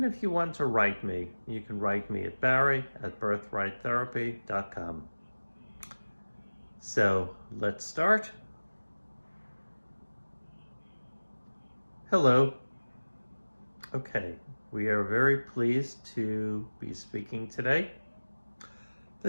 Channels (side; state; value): both; inverted; correlation -1.00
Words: if you want to write me, you can write me at barry@birthrighttherapy.com. So let's start. Hello. Okay, we are very pleased to be speaking today. The